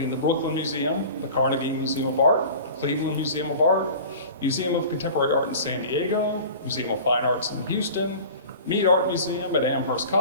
the Brooklyn Museum, the Carnegie Museum of Art, the Cleveland Museum of Art, Museum of Contemporary Art in San Diego, Museum of Fine Arts in Houston, Mead Art Museum at Amherst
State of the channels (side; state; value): both; inverted; correlation -0.40